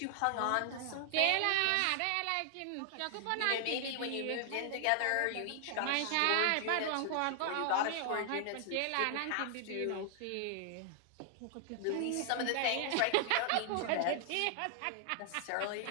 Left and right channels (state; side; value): different; both; correlation 0.00